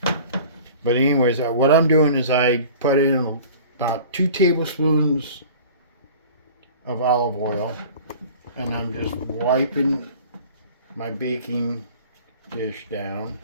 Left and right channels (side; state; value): both; inverted; correlation -0.43